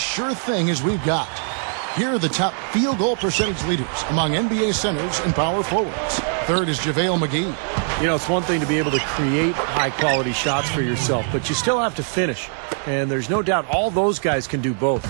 thing as we've got. Here are the top field goal percentage leaders among NBA centers and power forwards. Third is JaVale McGee. You know, it's one thing to be able to create high-quality shots for yourself, but you still have to finish. And there's no doubt all those guys can do both.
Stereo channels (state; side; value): silent; left; 57 dB below the other